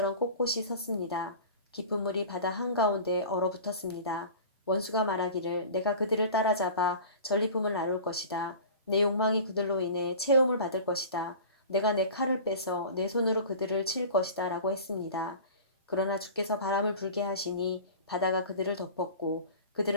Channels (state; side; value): inverted; both; correlation -0.38